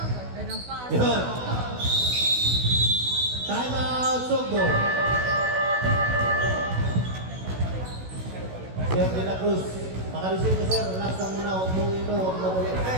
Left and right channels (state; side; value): late; left; 16 ms